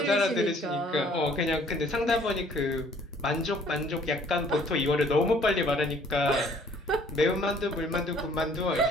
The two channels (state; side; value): normal; both; correlation 0.58